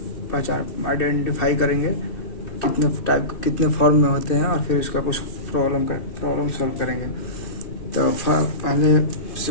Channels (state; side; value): late; right; 2.7 ms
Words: पहचान आइडेंटिफाई करेंगे, कितने फॉर्म में होते हैं, और फिर इसका कुछ प्रॉब्लम सॉल्व करेंगे। तो पहले